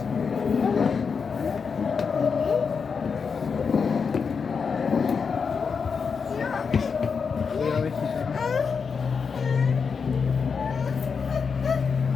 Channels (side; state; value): right; quieter; 5.7 dB